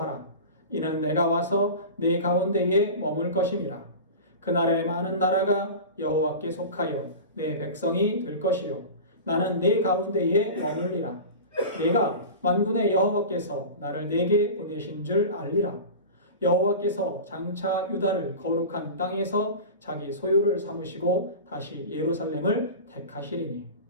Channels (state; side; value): inverted; both; correlation -0.31